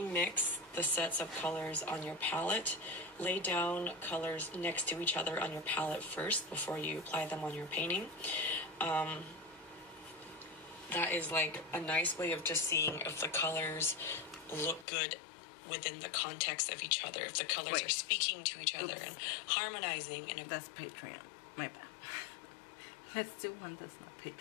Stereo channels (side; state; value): right; drops out; at 14.9 s